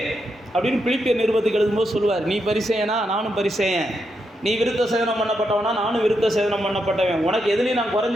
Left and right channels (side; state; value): both; normal; correlation 0.82